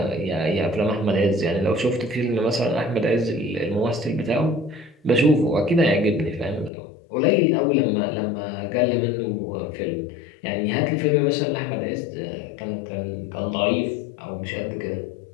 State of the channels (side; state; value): right; drops out; at 6.7 s